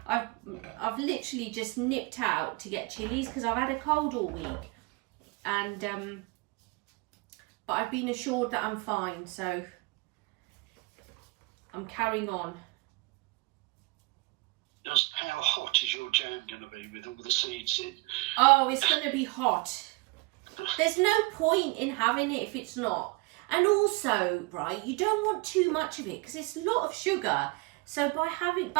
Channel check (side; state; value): left; quieter; 25.8 dB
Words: I've literally just nipped out to get chilies because I've had a cold all week, and but I've been assured that I'm fine, so I'm carrying on. Just how hot is your jam going to be with all the seeds in? Oh, it's going to be hot. There's no point in having it if it's not. And also, right, you don't want too much of it because it's a lot of sugar. So by